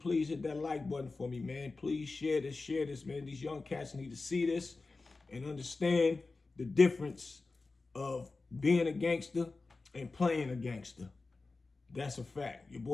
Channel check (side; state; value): right; quieter; 3.7 dB